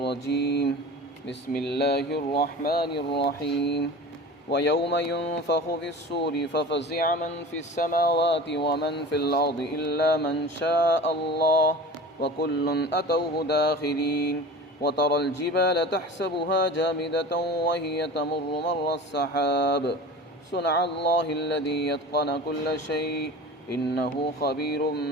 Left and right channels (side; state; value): both; normal; correlation 0.36